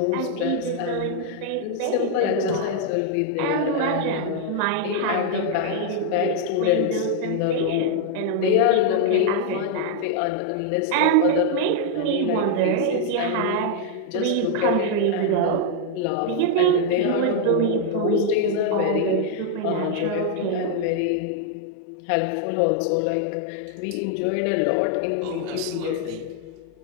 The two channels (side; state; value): both; different; correlation 0.00